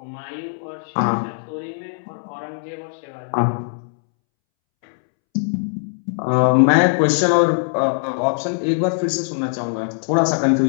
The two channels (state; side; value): silent; right; 65 dB below the other